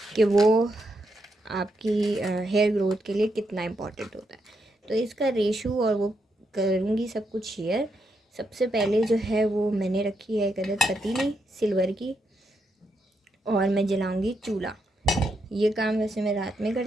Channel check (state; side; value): normal; both; correlation 0.81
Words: कि वो आपकी हेयर ग्रोथ के लिए कितना इम्पोर्टेंट होता है। तो इसका रेशो और वो करूँगी सब कुछ शेयर। सबसे पहले जो है वो मैंने रखी है एक अदद पतीली सिल्वर की और मैं जलाऊँगी चूल्हा। ये काम वैसे मैं रात में